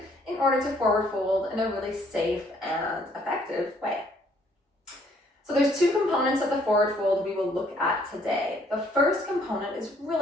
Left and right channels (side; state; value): both; normal; correlation 0.64